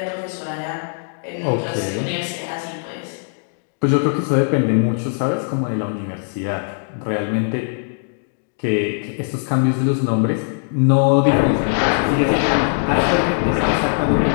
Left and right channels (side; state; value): right; silent; digital silence